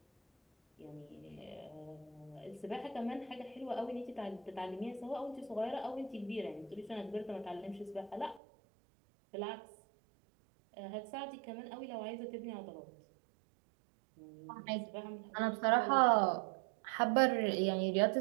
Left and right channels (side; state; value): left; drops out; at 8.4 s